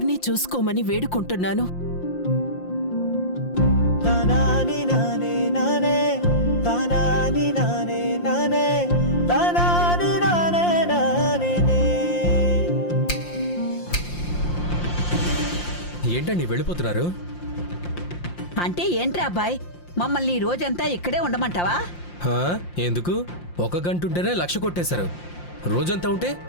చూసుకోమని వేడుకుంటున్నాను. ఏంటండి వెళ్ళిపోతున్నారు? అంటే ఏంట్రా అబ్బాయ్, మమ్మల్ని ఈ రోజంతా ఇక్కడే ఉండమంటావా? హా, ఎందుకు? 1 గంట ఉంటేనే 1,00,000 కొట్టేశారు. రోజంతా ఉంటే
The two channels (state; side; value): late; right; 5.7 ms